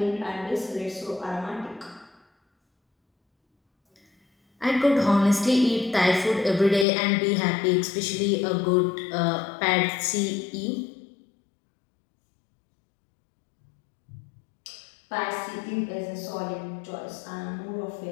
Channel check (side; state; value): right; drops out; at 6.9 s